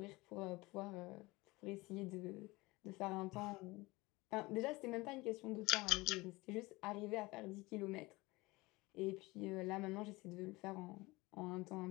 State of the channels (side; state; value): right; quieter; 22.1 dB